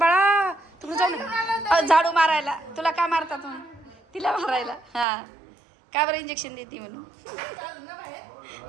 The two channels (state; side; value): drops out; left; at 5.1 s